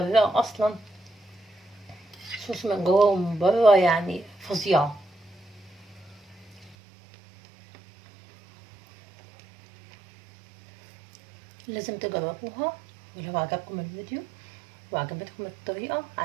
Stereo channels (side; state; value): left; drops out; at 6.8 s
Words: اصلا صوص من جوه ومن بره، يعني فظيعة. لازم تجربوها. ولو عجبكم الفيديو وعجبتكم الطريقة،